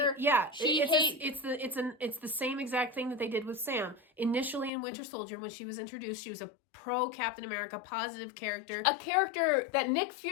Yeah, it's the same exact thing that they did with Sam. Initially in Winter Soldier, when she was introduced, she was a pro Captain America, positive character. A character that Nick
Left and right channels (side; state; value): right; drops out; at 4.7 s